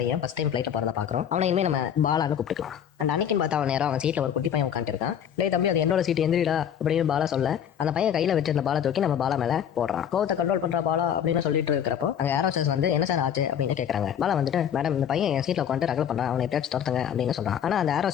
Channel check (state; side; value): quieter; right; 9.0 dB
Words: பையன் ஃபர்ஸ்ட் டைம் ஃப்ளைட்டில் போகிறத பார்க்குறோம். அவனை இனிமேல் நம்ம பாலான்னு கூப்பிட்டுக்கலாம். அண்ட் அன்னைக்குன்னு பார்த்தா அவன் நேரம் அவன் சீட்டில் ஒரு குட்டி பையன் உட்காந்துருக்கான். டேய் தம்பி, அது என்னோட சீட் எந்திரிடா அப்படின்னு பாலா சொல்ல அந்த பையன் கையில் வச்சிருந்த பாலை தூக்கி நம்ம பாலா மேலே போடுறான். கோவத்தை கண்ட்ரோல் பண்ற பாலா அப்படின்னு சொல்லிட்டு இருக்கிறப்போ அங்கே ஏரோஸ்டர்ஸ் வந்து என்ன சார் ஆச்சு அப்படின்னு கேட்குறாங்க. பாலா வந்துட்டு மேடம், இந்த பையன் என் சீட்டில் உட்காந்து ரகல் பண்ணுறான், அவனை எப்படியாச்சும் துரத்துங்க அப்படின்னு சொல்றான். ஆனால் அந்த